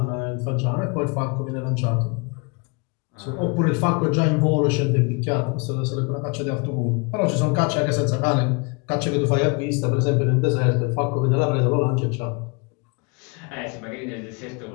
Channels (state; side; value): quieter; right; 31.5 dB